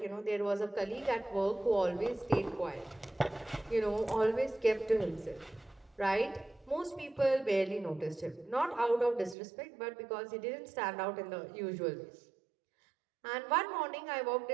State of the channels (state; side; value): drops out; left; at 9.3 s